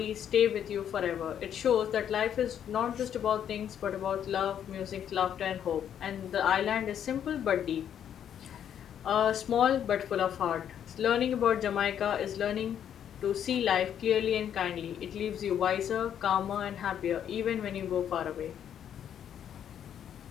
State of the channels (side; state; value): right; quieter; 9.4 dB